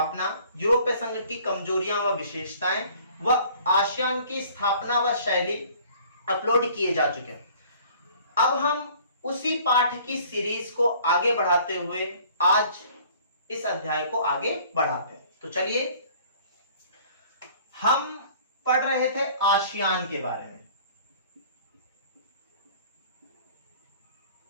यूरोपीय संघ की कमजोरियां व विशेषताएं व आसियान की स्थापना व शैली अपलोड किए जा चुके हैं। अब हम उसी पाठ की सीरीज को आगे बढ़ाते हुए आज इस अध्याय को आगे बढ़ाते हैं। तो चलिए, हम पढ़ रहे थे आसियान के बारे में।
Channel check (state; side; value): inverted; both; correlation -0.52